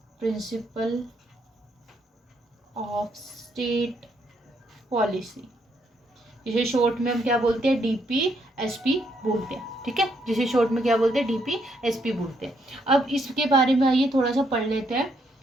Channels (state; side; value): normal; both; correlation 0.74